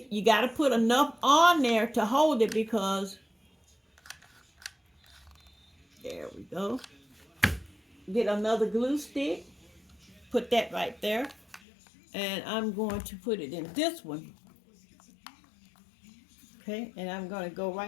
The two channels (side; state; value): right; drops out; at 11.6 s